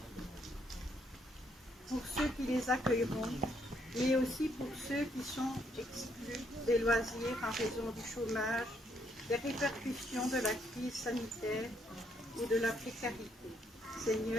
Pour ceux qui les accueilleront, mais aussi pour ceux qui sont exclus des loisirs en raison du chômage, des répercussions de la crise sanitaire ou de la précarité.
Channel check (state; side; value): normal; both; correlation 0.72